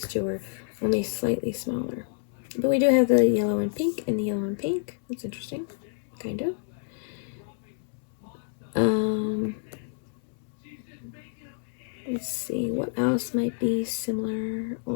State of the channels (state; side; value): silent; right; digital silence